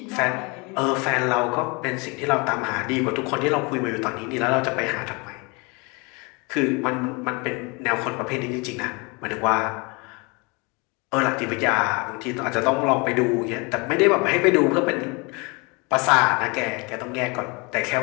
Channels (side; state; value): right; quieter; 29.1 dB